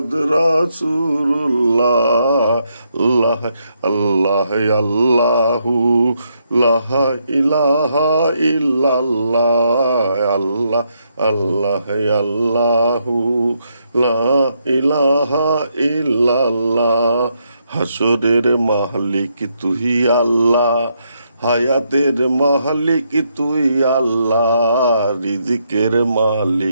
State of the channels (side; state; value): both; inverted; correlation -0.77